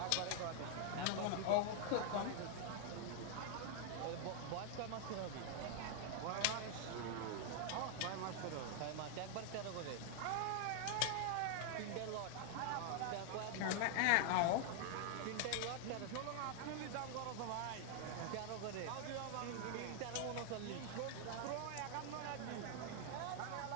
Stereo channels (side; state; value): both; different; correlation 0.00